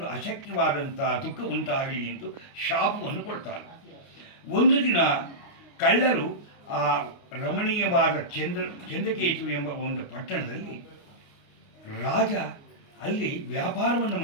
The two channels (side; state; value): right; late; 29 ms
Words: ಅಶಕ್ಯವಾದಂಥ ದುಃಖ ಉಂಟಾಗಲಿ ಎಂದು ಶಾಪವನ್ನು ಕೊಡ್ತಾನೆ. ಒಂದು ದಿನ ಕಳ್ಳರು ಆ ರಮಣೀಯವಾದ ಚಂದ್ರಕೇತು ಎಂಬ ಒಂದು ಪಟ್ಟಣದಲ್ಲಿ ರಾಜ ಅಲ್ಲಿ ವ್ಯಾಪಾರವನ್ನು